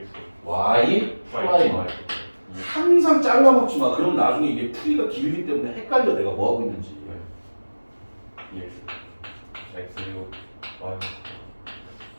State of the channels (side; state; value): both; inverted; correlation -1.00